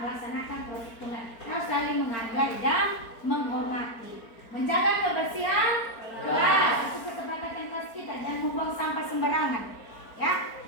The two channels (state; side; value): late; right; 4.4 ms